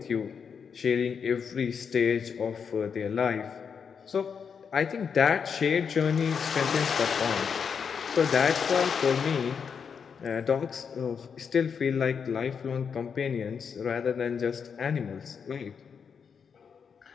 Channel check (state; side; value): quieter; right; 6.5 dB